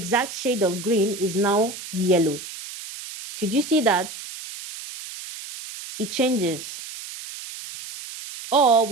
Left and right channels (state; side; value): noise; right; hiss, 11 dB below the sound